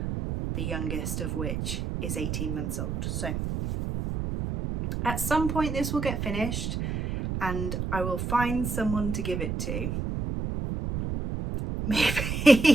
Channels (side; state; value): right; noise; rumble, 3 dB below the sound